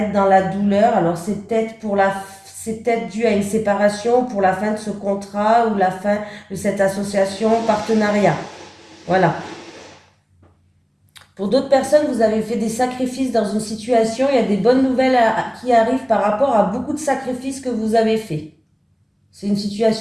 dans la douleur. Alors c'est peut-être dû à une séparation, pour la fin de ce contrat ou la fin de cette association, partenariat. Voilà. Pour d'autres personnes, vous avez fait des sacrifices dans une situation, il y a des bonnes nouvelles qui arrivent par rapport à beaucoup de sacrifices que vous avez faits. C'est une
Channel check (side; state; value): both; identical; correlation 1.00